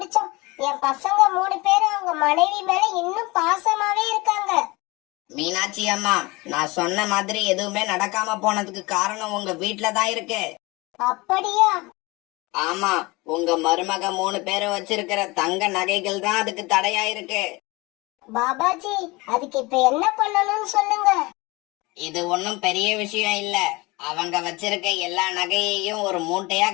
என் பசங்க 3 பேரும் அவங்க மனைவி மேல இன்னும் பாசமாவே இருக்காங்க. மீனாட்சி அம்மா, நான் சொன்ன மாதிரி எதுவுமே நடக்காம போனதுக்கு காரணம் உங்க வீட்டுலதான் இருக்கு. அப்படியா? ஆமா, உங்க மருமக 3 பேரும் வச்சிருக்கிற தங்க நகைகள் தான் அதுக்கு தடையா இருக்கு. பாபாஜி, அதுக்கு இப்ப என்ன பண்ணணும்னு சொல்லுங்க. இது ஒன்னும் பெரிய விஷயம் இல்ல. அவங்க வச்சிருக்க எல்லா நகையையும் ஒரு மூட்டையா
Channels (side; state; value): right; quieter; 23.5 dB